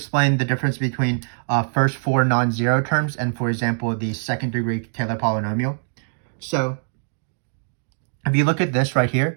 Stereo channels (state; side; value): silent; left; digital silence